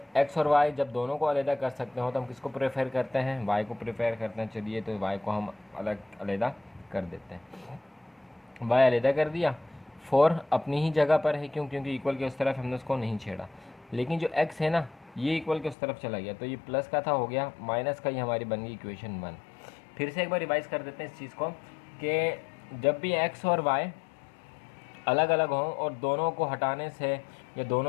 x और y जब दोनों को अलग कर सकते हो तो हम किसको प्रेफर करते हैं? y को प्रेफर करते हैं। चलिए तो y को हम अलग कर देते हैं। y अलग कर दिया, 4 अपनी ही जगह पर है, क्योंकि इक्वल के उस तरफ हमने उसको नहीं छेड़ा। लेकिन जो x है ना, ये इक्वल के उस तरफ चला गया, तो ये प्लस का था हो गया माइनस का, ये हमारी बन गई इक्वेशन 1। फिर से एक बार रिवाइज कर देते हैं इस चीज़ को कि जब भी x और y अलग अलग हों और दोनों को हटाने से या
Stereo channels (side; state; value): right; drops out; at 15.8 s